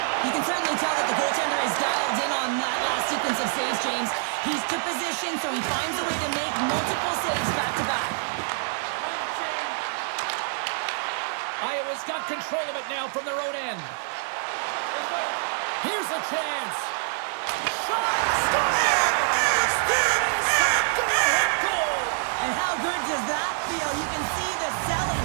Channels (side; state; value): left; silent; 61 dB below the other